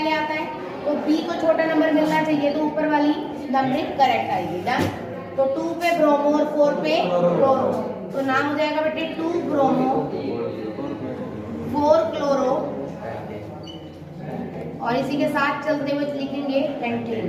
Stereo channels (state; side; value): identical; both; correlation 1.00